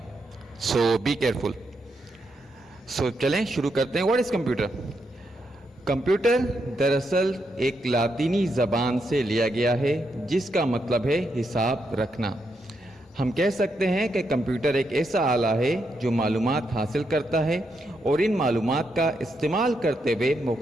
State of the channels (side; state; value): both; normal; correlation 0.81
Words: سو بی کیئرفل. سو چلیں شروع کرتے ہیں. What is computer? کمپیوٹر دراصل ایک لاطینی زبان سے لیا گیا ہے جس کا مطلب ہے حساب رکھنا. ہم کہہ سکتے ہیں کہ کمپیوٹر ایک ایسا آلہ ہے جو معلومات حاصل کرتا ہے اور ان معلومات کا استعمال کرتے ہوئے